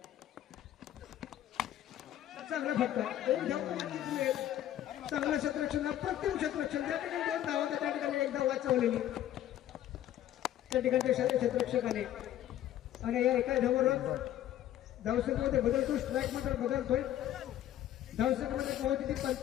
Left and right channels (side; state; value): right; quieter; 12.3 dB